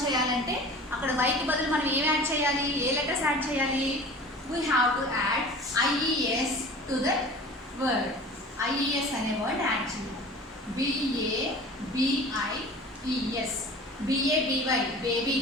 చేయాలంటే అక్కడ వైకి బదులు మనం ఏం యాడ్ చేయాలి? ఏ లెటర్స్ యాడ్ చేయాలి? We have to add IES to that word. IES అనే వర్డ్ యాడ్ చేయాలి. BABIES, BABY baby.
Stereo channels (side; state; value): both; normal; correlation 0.40